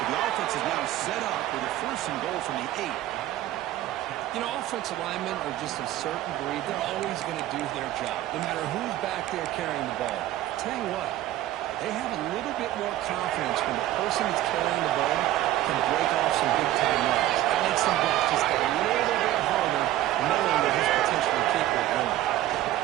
the offense is now set up with a 1st and goal from the 8. You know, offensive linemen are just a certain breed. They're always going to do their job, no matter who's back there carrying the ball. Tell you what, they have a little bit more confidence when the person that's carrying the ball can break off some big-time runs. That makes them block just a little bit harder, knowing that he's potentially capable of running.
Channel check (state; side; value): quieter; left; 14.3 dB